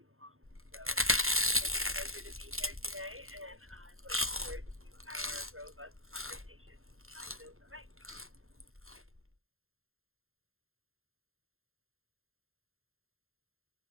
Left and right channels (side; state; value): left; late; 0.61 ms